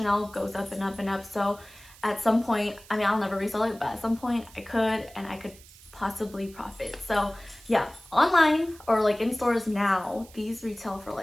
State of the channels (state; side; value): noise; right; hiss, 22 dB below the sound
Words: goes up and up and up. So at some point, I mean, I'll never resell it, but at some point I could, and I could possibly profit. So yeah, online or like in stores now, these retail for